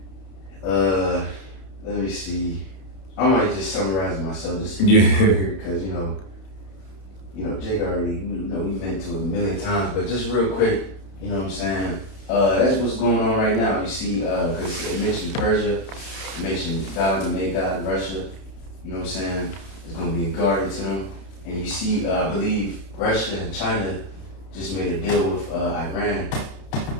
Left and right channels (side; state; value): right; late; 31 ms